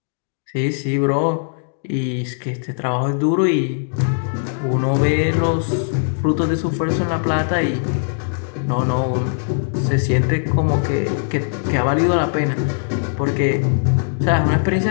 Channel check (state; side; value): silent; right; digital silence